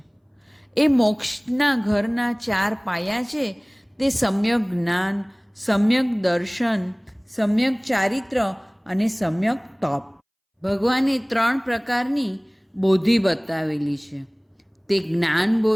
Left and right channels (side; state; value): both; identical; correlation 1.00